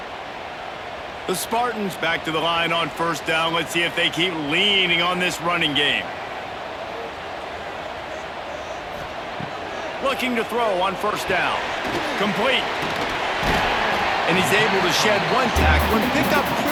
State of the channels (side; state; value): both; identical; correlation 1.00